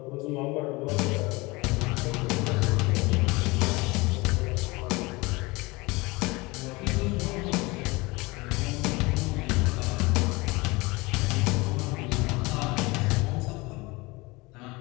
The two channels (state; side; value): quieter; right; 23.9 dB